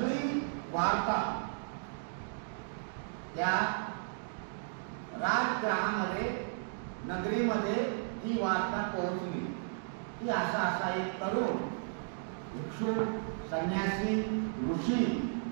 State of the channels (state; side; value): silent; left; digital silence